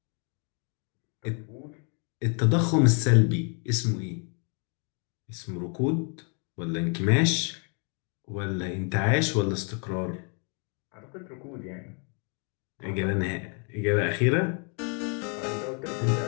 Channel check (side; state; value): right; quieter; 38.3 dB